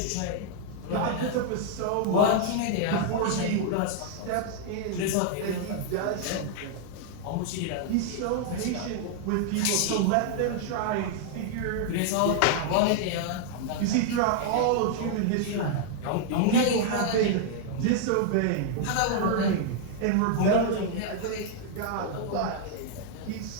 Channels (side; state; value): both; different; correlation 0.00